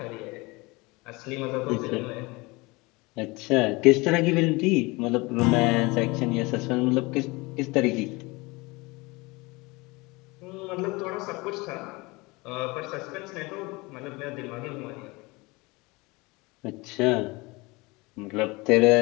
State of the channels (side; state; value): right; quieter; 24.4 dB